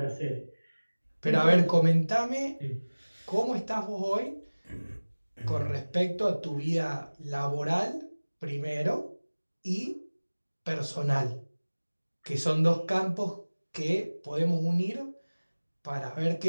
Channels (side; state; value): both; inverted; correlation -1.00